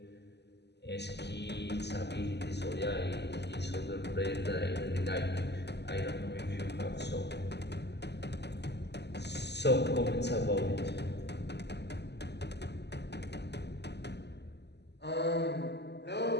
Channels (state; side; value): late; right; 0.50 ms